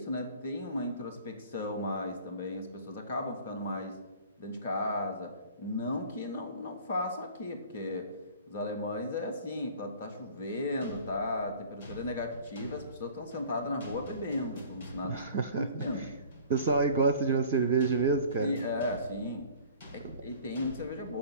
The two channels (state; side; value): inverted; both; correlation -0.46